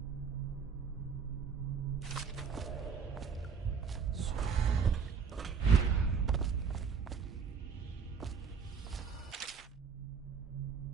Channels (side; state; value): left; quieter; 6.2 dB